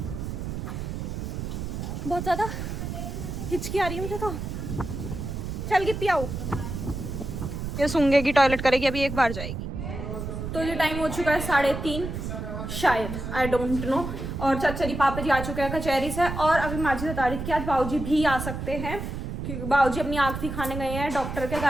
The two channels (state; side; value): noise; right; rumble, 5 dB below the sound